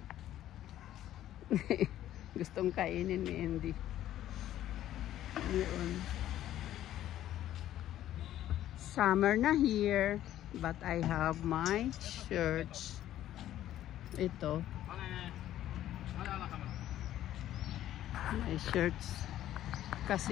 Gustong kainin ni Andy. Yun. Summer na here, but I have my shirts. Ito. My shirts.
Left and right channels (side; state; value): right; quieter; 12.7 dB